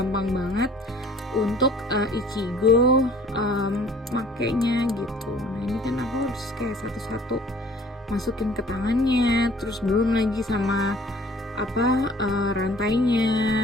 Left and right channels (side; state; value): both; normal; correlation 0.53